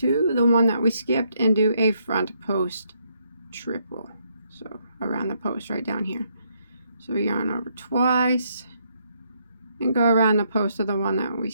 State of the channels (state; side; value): inverted; both; correlation -0.73